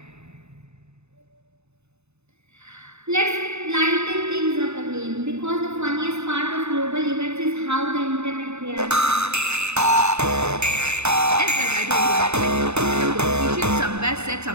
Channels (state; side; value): late; left; 0.81 ms